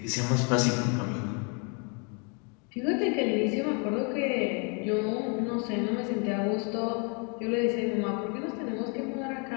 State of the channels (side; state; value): right; quieter; 35.9 dB